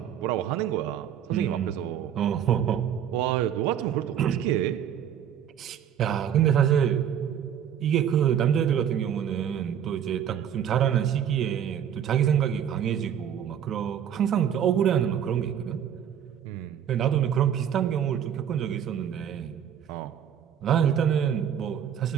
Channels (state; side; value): quieter; left; 9.2 dB